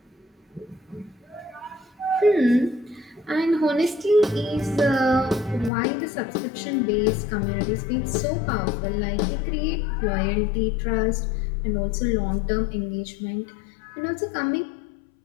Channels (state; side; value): drops out; right; at 5.7 s